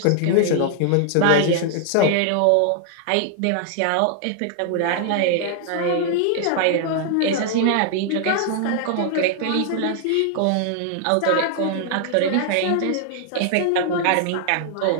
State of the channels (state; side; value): different; both; correlation -0.01